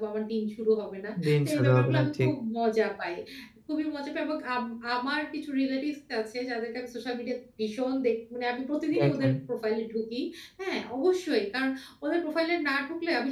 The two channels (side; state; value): both; identical; correlation 1.00